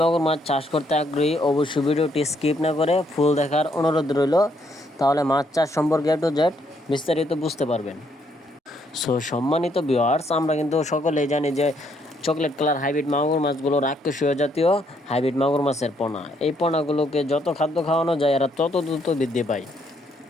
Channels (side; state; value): both; normal; correlation 0.71